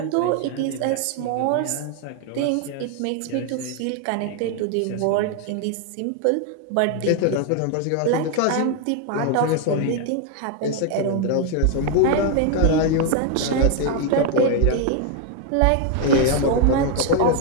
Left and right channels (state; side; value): different; both; correlation 0.01